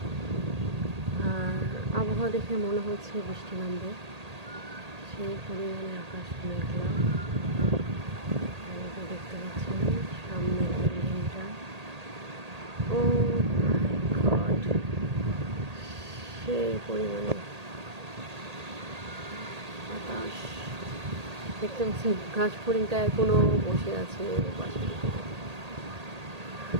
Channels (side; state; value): left; late; 1.8 ms